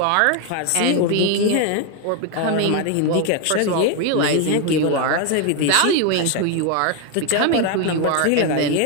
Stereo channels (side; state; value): both; different; correlation 0.01